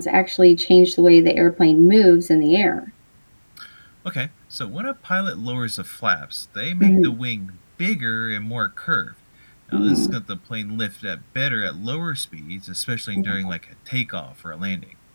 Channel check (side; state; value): both; inverted; correlation -1.00